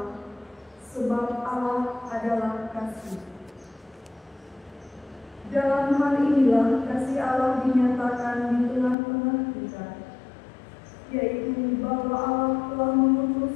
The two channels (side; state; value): right; drops out; at 9.0 s